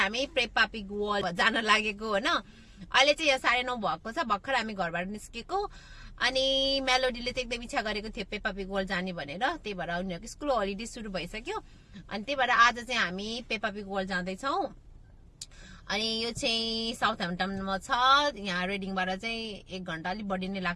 पेप्पा पिग वर्ल्ड जान लागेको होइन। अहिले चाहिँ यहाँ 9:30 भएको छ। भर्खर हामी घरबाट निस्केको अनि मेलोडीले चाहिँ एकदम इच्छा गरेको थियो पेप्पा पिग वर्ल्ड जाने भनेर। त्यही भएर उनीहरूको स्कुल हलिडे सुरु भइसक्यो अनि त्यही भएर आज चाहिँ हामी पेप्पा पिग वर्ल्ड जाँदैछौँ। अनि यो चाहिँ साउथ ह्याम्पटनमा छ। यहाँ रेडिङबाट चाहिँ 1 घण्टा अलिक बढी नै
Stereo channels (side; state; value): both; identical; correlation 1.00